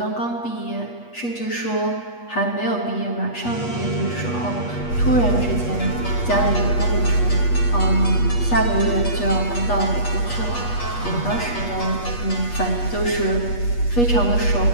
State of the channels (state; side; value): late; right; 8.3 ms